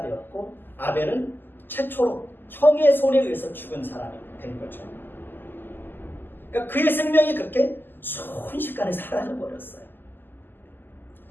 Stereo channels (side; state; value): right; late; 0.093 ms